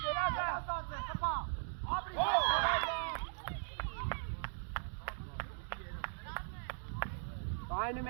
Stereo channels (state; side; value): silent; left; digital silence